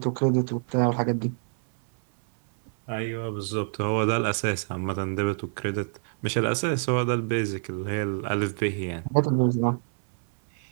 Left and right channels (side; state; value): left; silent; 61 dB below the other